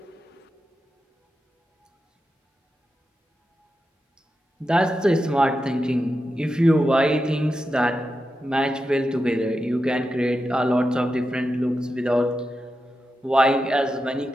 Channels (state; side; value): normal; both; correlation 0.89